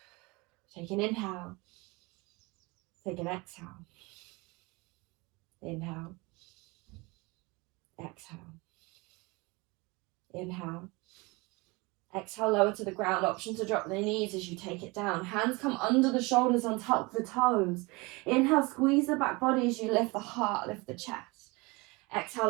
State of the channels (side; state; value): left; quieter; 25.4 dB